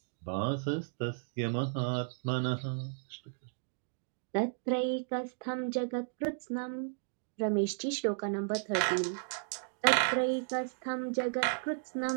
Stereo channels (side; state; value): left; silent; digital silence